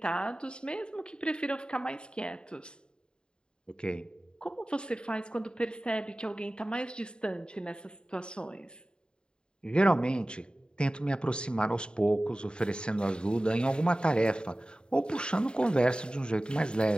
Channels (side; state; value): right; late; 0.050 ms